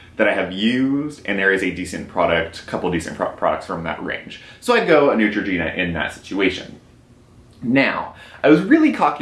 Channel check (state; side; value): identical; both; correlation 1.00